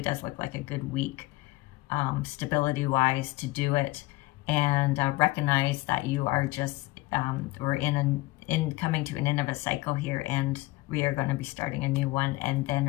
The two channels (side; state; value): right; quieter; 20.1 dB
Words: does look like a good week, stability-wise, to do it. And recognize that you are just, we're coming to an end of a cycle here, and we are going to be starting a new one, and then